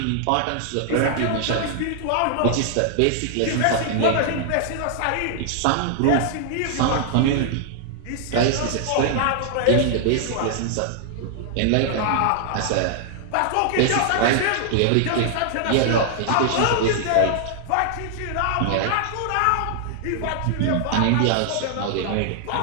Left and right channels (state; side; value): different; both; correlation 0.00